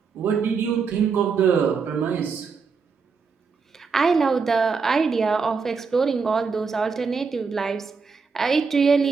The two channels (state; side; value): quieter; left; 5.2 dB